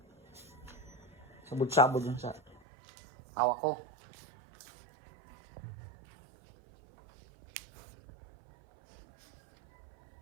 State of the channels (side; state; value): left; drops out; at 2.6 s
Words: Sabod-sabod yung sa hawak ko.